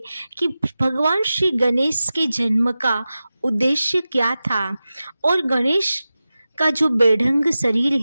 कि भगवान श्री गणेश के जन्म का उद्देश्य क्या था और गणेश का जो बेढंग शरीर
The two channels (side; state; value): both; inverted; correlation -0.95